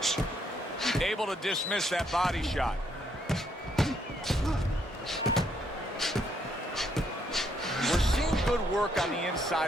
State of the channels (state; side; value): normal; both; correlation 0.72